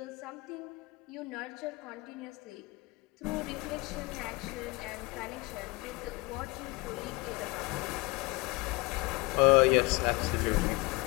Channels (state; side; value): quieter; right; 24.6 dB